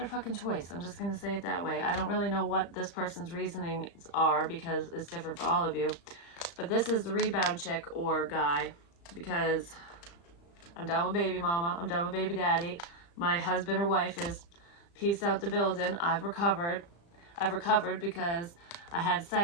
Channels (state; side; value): late; right; 35 ms